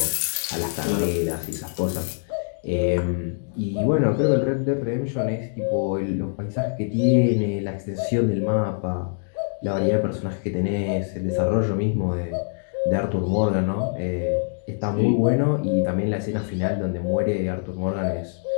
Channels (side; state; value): right; silent; digital silence